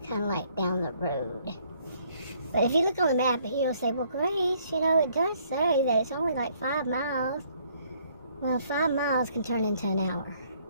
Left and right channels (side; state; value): both; inverted; correlation -0.65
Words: kind of like down the road. But if you look on the map, you'll say, well, Grace, you know, it does say that it's only like 5 miles. Well, 5 miles can turn into an hour